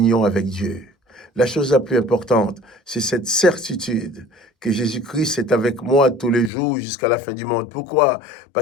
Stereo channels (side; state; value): right; drops out; at 6.5 s